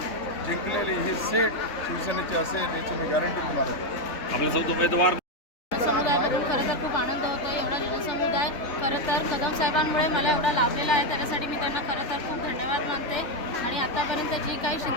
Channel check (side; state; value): right; late; 3.5 ms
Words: जिंकलेली ही सीट शिवसेनेची असेल याची मी गॅरंटी तुम्हाला देतो। समुदायामधून खरं तर खूप आनंद होतो। एवढा जनसमुदाय खरं तर कदम साहेबांमुळे मला एवढा लाभलेला आहे, त्याच्यासाठी मी त्यांना खरं तर खूप धन्यवाद मानते। आणि आतापर्यंत जी काही